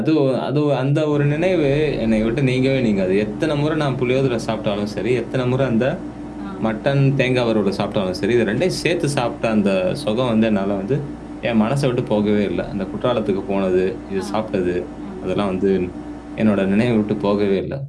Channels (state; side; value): identical; both; correlation 1.00